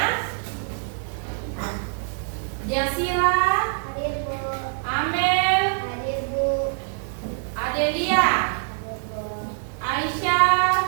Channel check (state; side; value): silent; left; 62 dB below the other